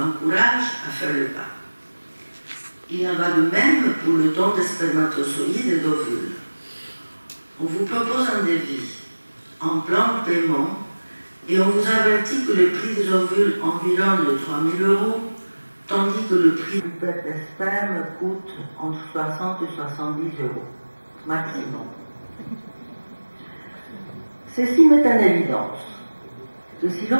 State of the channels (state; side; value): inverted; both; correlation -1.00